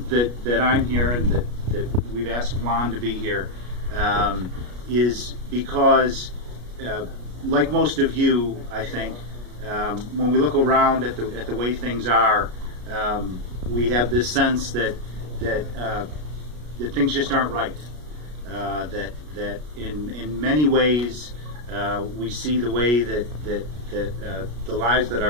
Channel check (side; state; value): left; late; 33 ms